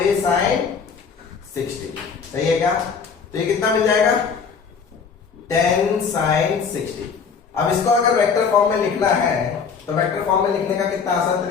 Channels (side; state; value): right; quieter; 5.9 dB